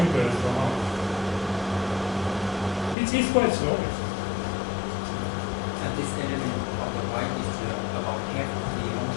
or not. It's quite slow. And this element of the y is about half of the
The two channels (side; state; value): right; drops out; at 3.0 s